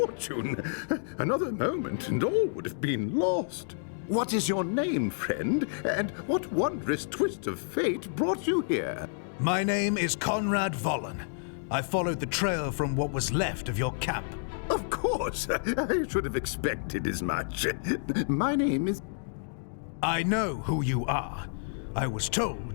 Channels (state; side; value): silent; right; digital silence